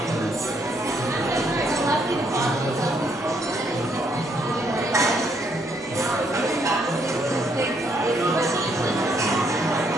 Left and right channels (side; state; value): both; normal; correlation 0.71